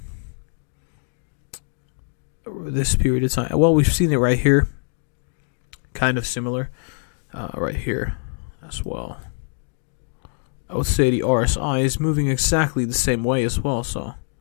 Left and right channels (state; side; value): silent; right; 63 dB below the other